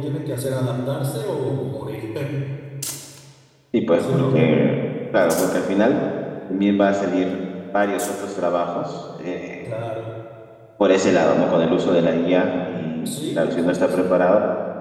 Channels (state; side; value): identical; both; correlation 1.00